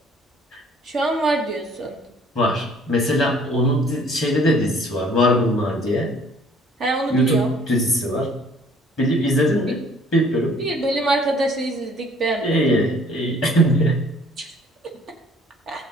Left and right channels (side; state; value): both; normal; correlation 0.56